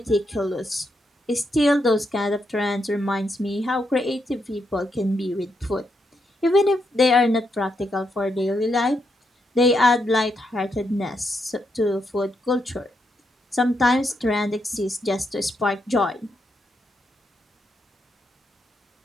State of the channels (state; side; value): normal; both; correlation 0.81